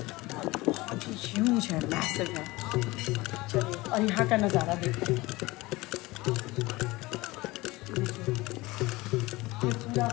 और बहुत ही ह्यूज है, मैसिव है। चलिए और यहाँ का नज़ारा देखते हैं। ये पूरा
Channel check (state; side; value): quieter; right; 20.9 dB